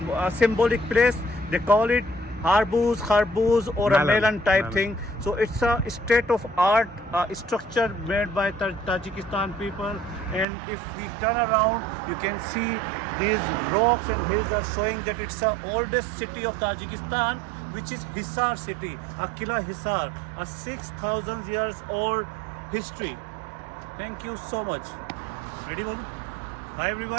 symbolic place. They call it Kharbuz or a Melon. melon type Melon. thing. So it's a state of art structure made by Tajikistan people. And if we turn around, you can see these rocks and hills are showing that it's the oldest city of Tajikistan, which is Hisar city, Akila Hisar, a 6,000 years old history. Thank you so much. Ready, Bolu? Hi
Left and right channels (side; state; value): left; drops out; at 10.5 s